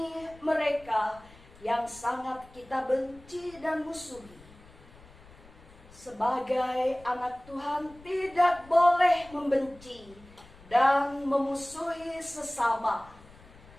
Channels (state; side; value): noise; left; rumble, 23 dB below the sound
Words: mereka yang sangat kita benci dan musuhi. Sebagai anak Tuhan tidak boleh membenci dan memusuhi sesama.